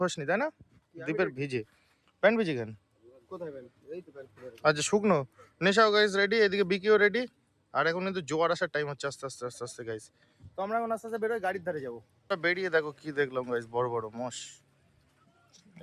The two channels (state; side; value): identical; both; correlation 1.00